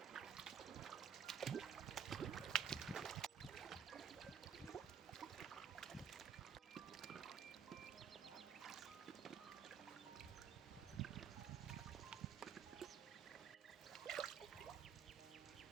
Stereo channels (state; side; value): quieter; left; 7.3 dB